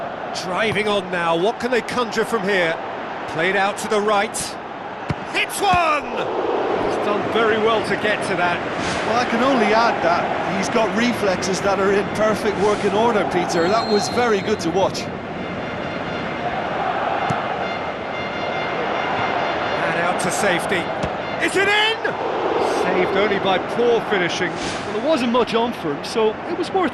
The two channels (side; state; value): both; identical; correlation 1.00